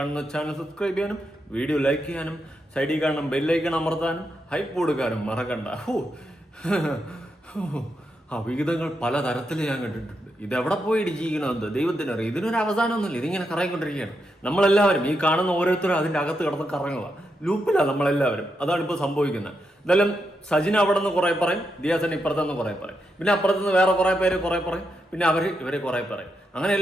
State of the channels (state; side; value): normal; both; correlation 0.84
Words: ചാനൽ സബ്സ്ക്രൈബ് ചെയ്യാനും വീഡിയോ ലൈക്ക് ചെയ്യാനും സൈഡിൽ കാണുന്ന ബെല്ലൈക്കൺ അമർത്താനും ഹൈപ്പ് കൊടുക്കാനും മറക്കണ്ട. വിഹിതങ്ങൾ പല തരത്തിൽ ഞാൻ കണ്ടിട്ടുണ്ട്. ഇതെവിടെ പോയി ഇടിച്ചിരിക്കണമെന്ന് ദൈവത്തിനറിയാം. ഇതിനൊരു അവസാനമൊന്നുമില്ല. ഇതിങ്ങനെ കറങ്ങിക്കൊണ്ടിരിക്കുകയാണ്. നമ്മളെല്ലാവരും ഈ കാണുന്ന ഓരോരുത്തരും അതിൻ്റെ അകത്ത് കിടന്ന് കറങ്ങുക, ലൂപ്പിലാണ് നമ്മളെല്ലാവരും. അതാണ് ഇപ്പോൾ സംഭവിക്കുന്നത്. എന്തായാലും സജിൻ അവിടെ നിന്ന് കുറെ പറയും, ദിയാസൻ ഇപ്പുറത്തുനിന്ന് കുറെ പറയും, പിന്നെ അപ്പുറത്തുനിന്ന് വേറെ കുറെ പേര് കുറെ പറയും, പിന്നെ ഇവരെ കുറെ പറയും. അങ്ങനെ